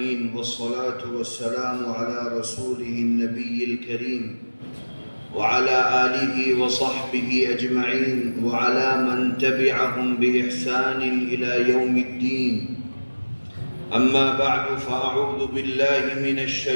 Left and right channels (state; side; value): inverted; both; correlation -1.00